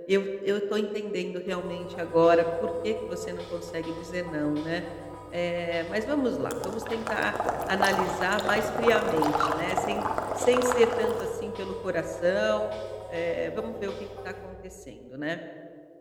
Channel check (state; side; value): identical; both; correlation 1.00